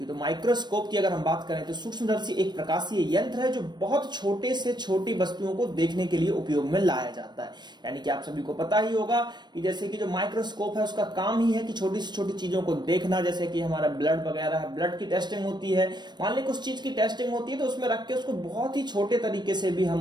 तो माइक्रोस्कोप की अगर हम बात करें तो सूक्ष्मदर्शी एक प्रकाशीय यंत्र है जो बहुत छोटे से छोटी वस्तुओं को देखने के लिए उपयोग में लाया जाता है। यानी कि आप सभी को पता ही होगा कि जैसे कि जो माइक्रोस्कोप है उसका काम ही है कि छोटी से छोटी चीजों को देखना। जैसे कि हमारा ब्लड वगैरह है, ब्लड की टेस्टिंग होती है, मान ली कुछ चीज की टेस्टिंग होती है तो उसमें रख के उसको बहुत ही छोटे तरीके से भी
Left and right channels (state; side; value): late; left; 0.21 ms